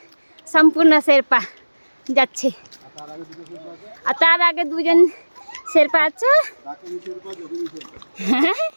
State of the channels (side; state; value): both; inverted; correlation -1.00